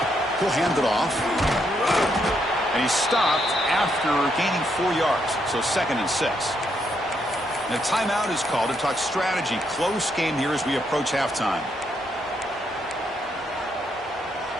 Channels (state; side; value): normal; both; correlation 0.77